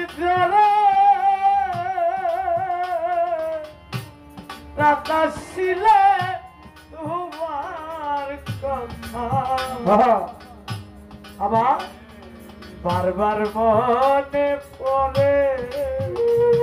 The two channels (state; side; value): identical; both; correlation 1.00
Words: ধরে রাতা ছিলে তোমার কথা আবার বারবার মনে পড়ে